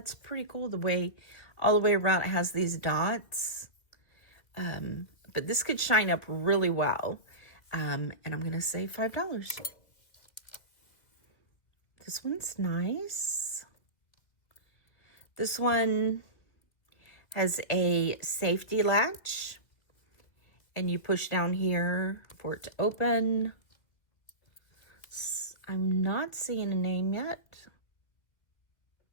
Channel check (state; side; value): late; right; 2.4 ms